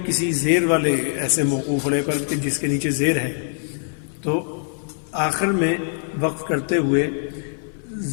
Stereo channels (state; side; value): silent; right; digital silence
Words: کسی زیر والے ایسے موقوف علیہ پر کہ جس کے نیچے زیر ہے، تو آخر میں وقف کرتے ہوئے